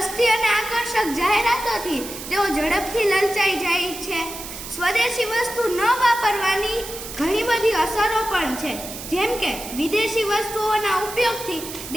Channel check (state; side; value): noise; right; hiss, 10 dB below the sound